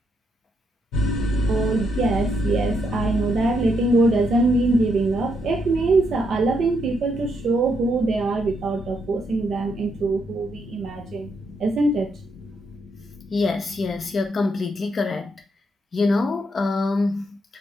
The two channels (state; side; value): normal; both; correlation 0.77